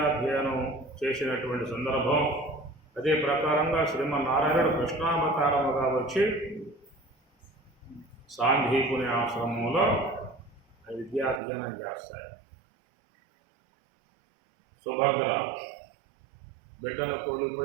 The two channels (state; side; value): drops out; left; at 11.4 s